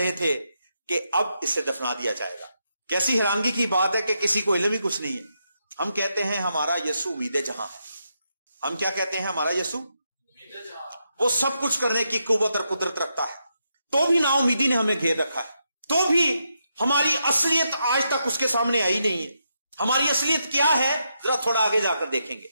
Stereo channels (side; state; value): both; inverted; correlation -0.82